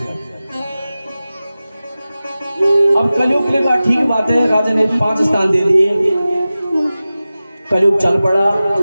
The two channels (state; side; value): inverted; both; correlation -0.96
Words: अब कलयुग ने कहा ठीक बात है, राजा ने 5 स्थान दे दिए, कलयुग चल पड़ा।